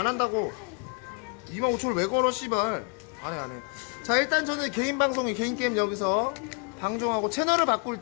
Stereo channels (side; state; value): right; quieter; 36.3 dB